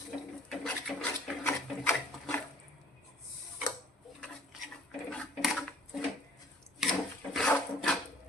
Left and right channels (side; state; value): both; normal; correlation 0.53